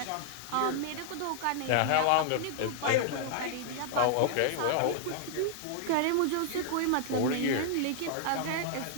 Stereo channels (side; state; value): both; different; correlation -0.01